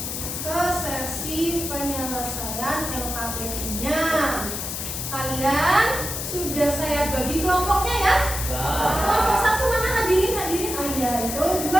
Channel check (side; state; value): left; noise; hiss, 5 dB below the sound